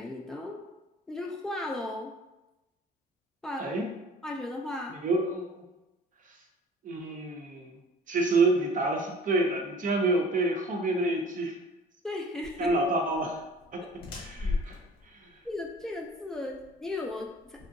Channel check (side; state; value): both; normal; correlation 0.48